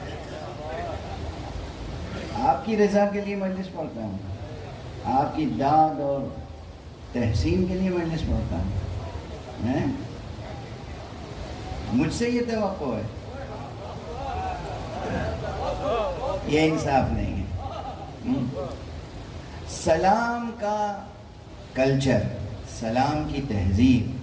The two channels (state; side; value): identical; both; correlation 1.00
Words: آپ کی رضا کے لیے مجلس پڑھتا ہوں، آپ کی داد اور تحسین کے لیے مجلس پڑھتا ہوں۔ مجھ سے یہ توقع ہے، یہ انصاف نہیں ہے۔ سلام کا کلچر، سلام کی تہذیب،